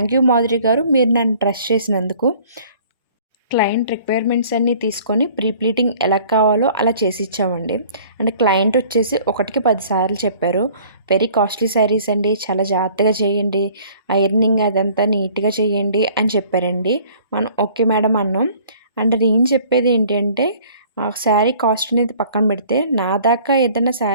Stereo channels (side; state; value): both; inverted; correlation -0.53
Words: యూ మాధురి గారు మీరు నన్ను ట్రస్ట్ చేసినందుకు. క్లయింట్ రిక్వైర్మెంట్స్ అన్నీ తీసుకొని ప్రీ ప్లీటింగ్ ఎలా కావాలో అలా చేసి ఇచ్చామండి. అంటే క్లయింట్ వచ్చేసి ఒకటికి 10 సార్లు చెప్పారు. వెరీ కాస్ట్లీ శారీస్ అండి, చాలా జాగ్రత్తగా చేయండి, ఐరనింగ్ అదంతా నీట్గా చేయండి అని చెప్పారండి. మనం ఓకే మేడం అన్నాం. అండ్ నేను చెప్పేది ఏంటి అంటే శారీ కాస్ట్ అనేది పక్కన పెడితే నా దాకా ఏదైనా